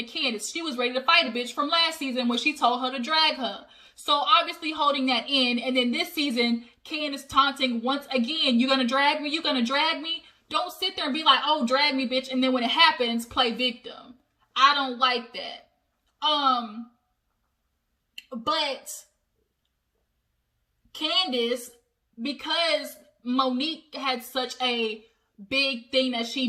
Candiace. She was ready to fight a bitch from last season when she told her to drag her. So obviously holding that in. And then this season, Candiace taunting once again, you gonna drag me? You gonna drag me? Don't sit there and be like, oh, drag me, bitch. And then when it happens, play victim. I don't like that. But Candiace, because Monique had such a big thing that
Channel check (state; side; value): identical; both; correlation 1.00